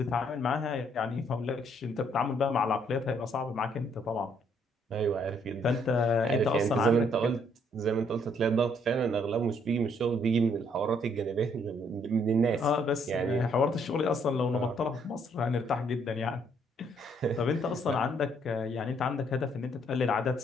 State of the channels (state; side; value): normal; both; correlation 0.68